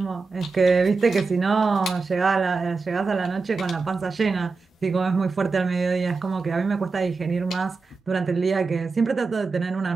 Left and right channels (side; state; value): left; quieter; 4.3 dB